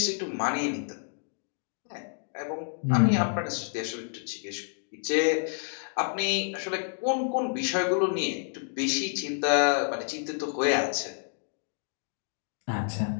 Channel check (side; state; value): right; silent; digital silence